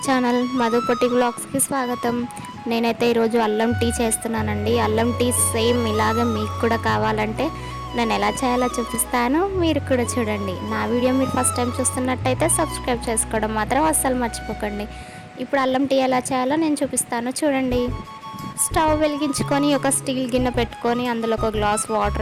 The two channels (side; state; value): both; identical; correlation 1.00